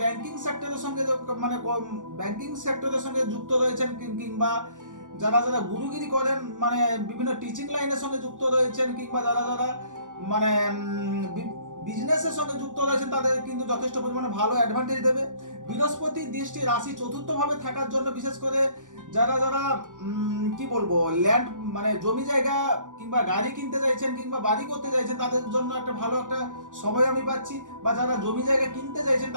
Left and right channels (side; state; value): left; late; 0.87 ms